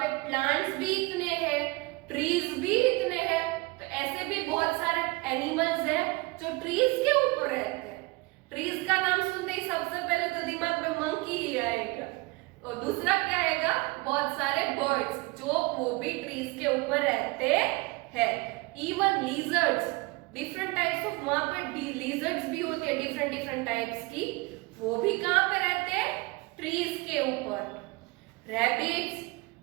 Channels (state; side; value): quieter; left; 24.3 dB